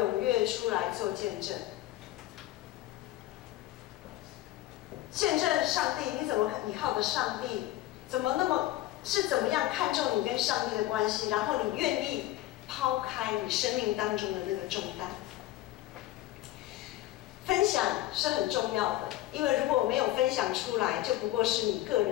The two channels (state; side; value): quieter; right; 15.6 dB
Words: 跃出来做见证。见证上帝，你怎么依靠的上帝？怎么样看重你跟上帝的关系？然后你愿意抛开你生命当中的那个重担。分享是很重要的，因为如果没有分享出来，就不过是你个